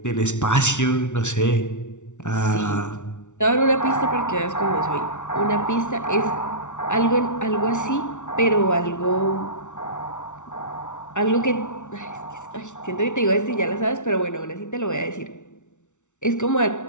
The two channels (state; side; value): late; right; 0.85 ms